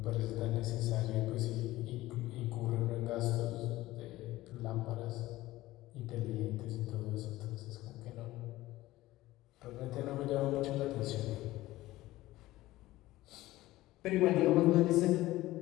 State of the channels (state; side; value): quieter; right; 17.1 dB